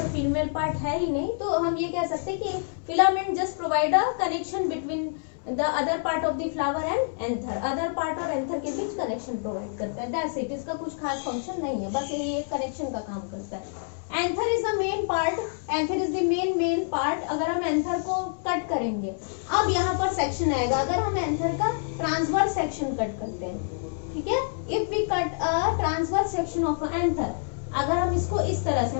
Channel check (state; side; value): silent; right; digital silence